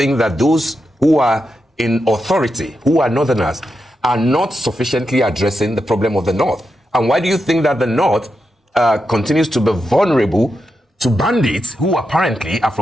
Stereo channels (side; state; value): both; normal; correlation 0.87